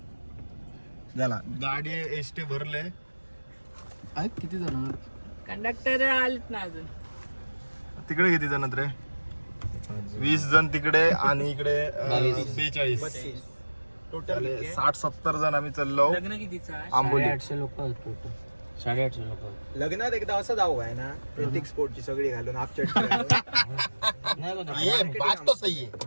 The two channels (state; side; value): inverted; both; correlation -1.00